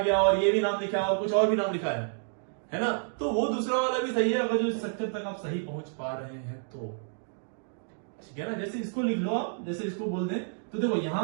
और ये भी नाम लिखा है और कुछ और भी नाम लिखा है ना, तो वो दूसरा वाला भी सही है, अगर जो स्ट्रक्चर तक आप सही पहुंच पा रहे हैं तो, ठीक है ना? जैसे इसको लिख लो आप, जैसे इसको बोल दें तो देखो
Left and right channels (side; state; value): left; silent; digital silence